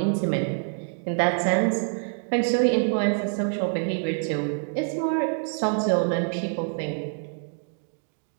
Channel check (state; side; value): silent; left; 61 dB below the other